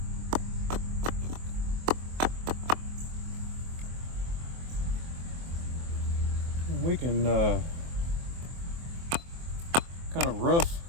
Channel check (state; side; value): late; left; 24 ms